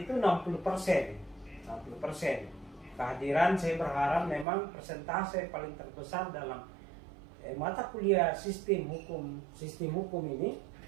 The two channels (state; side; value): drops out; left; at 4.5 s